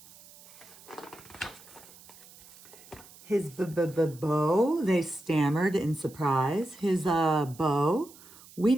His bow, they stammered in surprise. His bow? We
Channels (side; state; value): right; noise; hiss, 22 dB below the sound